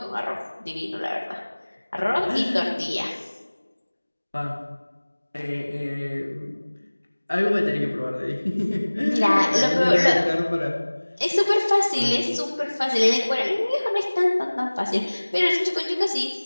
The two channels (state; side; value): inverted; both; correlation -1.00